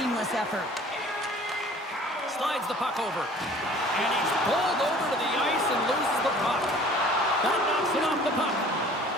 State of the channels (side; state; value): both; normal; correlation 0.49